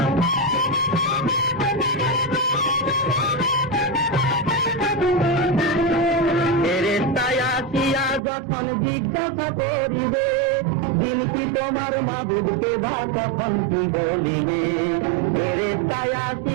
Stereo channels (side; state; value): left; drops out; at 8.2 s